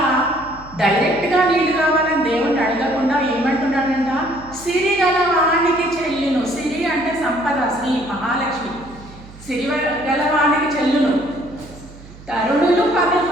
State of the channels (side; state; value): right; noise; hum, 19 dB below the sound